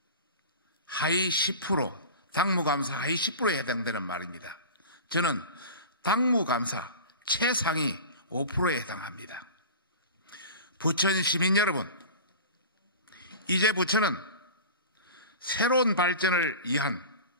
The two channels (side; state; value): both; inverted; correlation -0.34